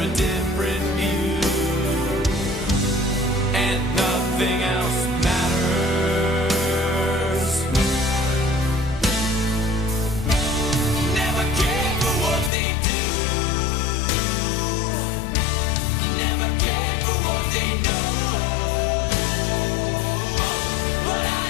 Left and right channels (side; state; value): right; drops out; at 12.5 s